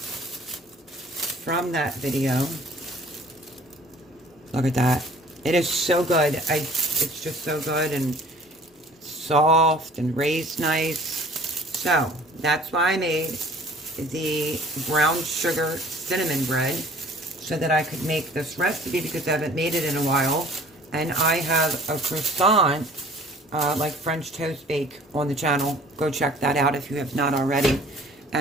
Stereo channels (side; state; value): both; normal; correlation 0.51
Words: from that video. Look at that. It is so good. It's just so good and soft and raised nice. So that's why I made the brown sugar cinnamon bread, so that I could make this recipe, because I haven't made it in a while. And I have a croissant, like French toast bake, on the channel. Go check that out if you have not already.